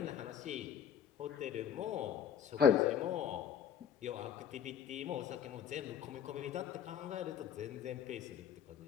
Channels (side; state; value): right; quieter; 8.5 dB